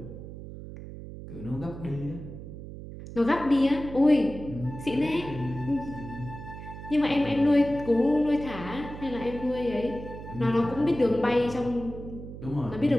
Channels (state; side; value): noise; right; hum, 12 dB below the sound